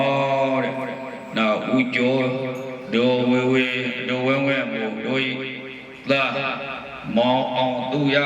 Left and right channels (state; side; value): identical; both; correlation 1.00